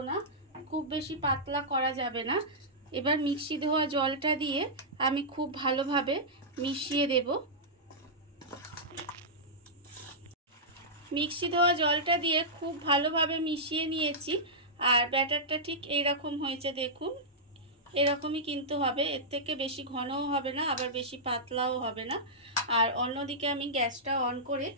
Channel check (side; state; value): both; normal; correlation -0.12